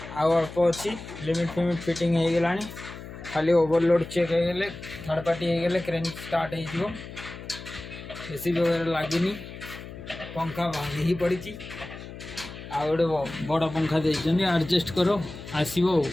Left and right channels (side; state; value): left; noise; hum, 13 dB below the sound